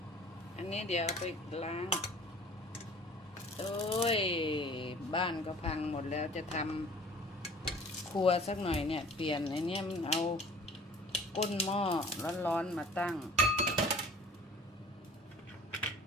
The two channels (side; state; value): both; normal; correlation 0.49